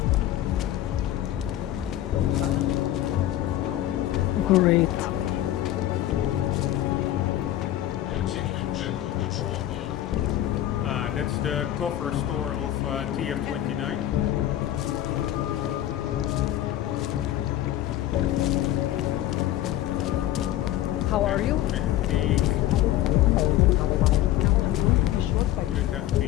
Great. That's the cover store of TF29. How are you? I think... Would it have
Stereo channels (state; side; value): quieter; right; 13.4 dB